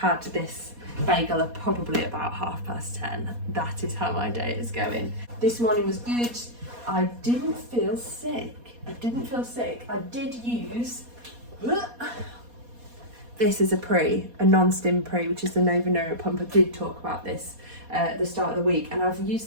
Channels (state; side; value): late; left; 4.2 ms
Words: this bagel at probably about 10:30. That is how my day is going. This morning was good. I didn't feel sick. I did use, this is a non-stim pre, which is the Nova Neuro Pump. I did talk about this at the start of the week, and I've used